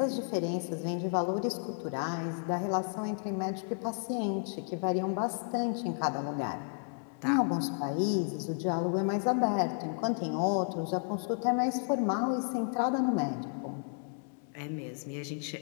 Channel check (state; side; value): silent; right; 56 dB below the other